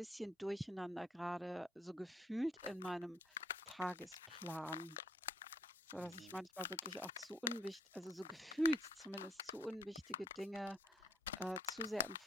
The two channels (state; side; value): normal; both; correlation 0.65